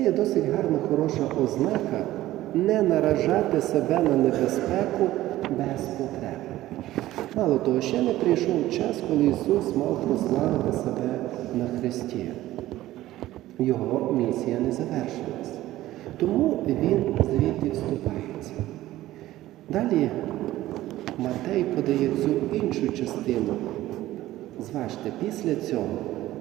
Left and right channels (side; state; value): left; quieter; 15.4 dB